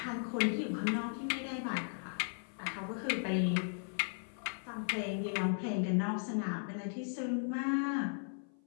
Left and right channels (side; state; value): right; silent; 53 dB below the other